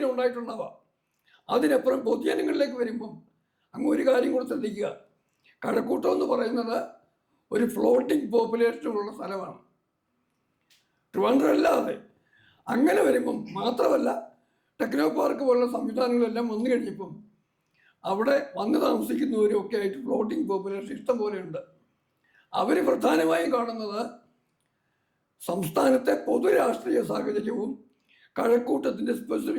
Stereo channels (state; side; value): identical; both; correlation 1.00